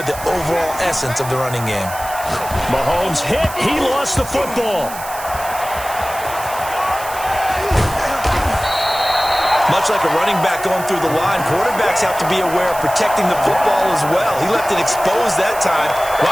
the overall essence of the running game. Mahomes hit. He lost the football. Much like a running back going through the line, quarterbacks have to be aware of protecting the football as well. He left it exposed that time,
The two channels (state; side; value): noise; right; hiss, 13 dB below the sound